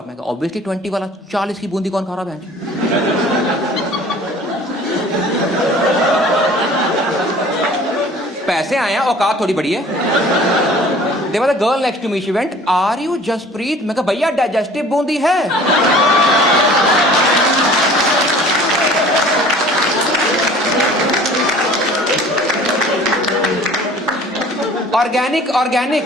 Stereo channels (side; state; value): both; normal; correlation 0.48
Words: मैं ऑब्वियसली 20 वाला, 40 की बूंदी कौन खा रहा है? पैसे आए हैं, औकात थोड़ी बड़ी है। There was a girl next to me. She went, "Are you Jaspreet?" मैं कहा भैया डाइजेस्टिव बूंदी है। ऑर्गेनिक ऑर्गेनिक,